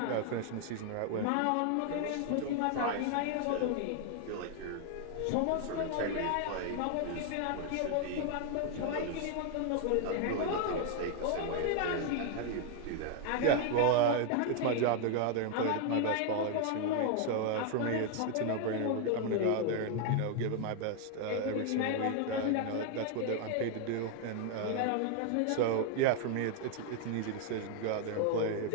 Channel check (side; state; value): both; different; correlation 0.00